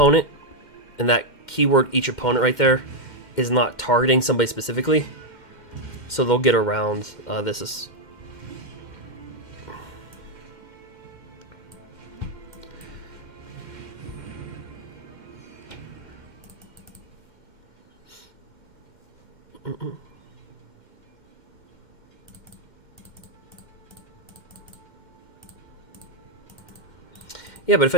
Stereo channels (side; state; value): right; late; 2.1 ms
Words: And that keyword, each opponent right there, is not targeting somebody specifically. So they'll get around this. Is yeah, but if